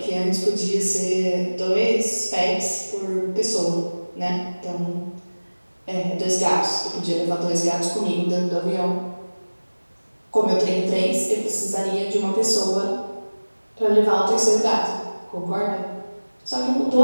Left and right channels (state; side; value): inverted; both; correlation -1.00